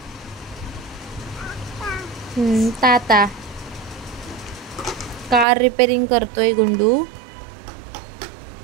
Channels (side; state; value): left; drops out; at 5.5 s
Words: ताता कार रिपेअरिंग करतोय गुंडू.